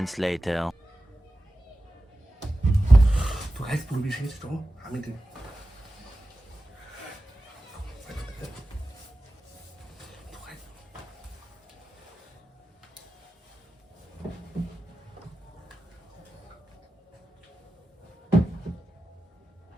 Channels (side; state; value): both; normal; correlation 0.94